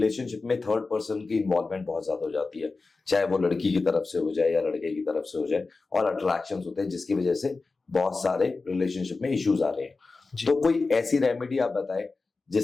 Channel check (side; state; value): right; quieter; 3.9 dB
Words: में थर्ड पर्सन की इन्वॉल्वमेंट बहुत ज्यादा हो जाती है, चाहे वो लड़की की तरफ से हो जाए या लड़के की तरफ से हो जाए, और अट्रैक्शंस होते हैं जिसकी वजह से बहुत सारे रिलेशनशिप में इश्यूज आ रहे हैं। जी। तो कोई ऐसी रेमेडी आप बताएं